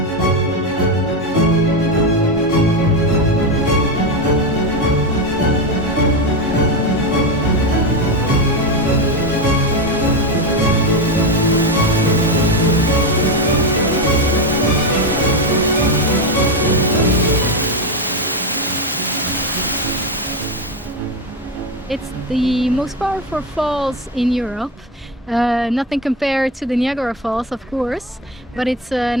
It's the most powerful falls in Europe. Nothing compared to the Niagara Falls, of course, but it's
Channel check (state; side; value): normal; both; correlation 0.14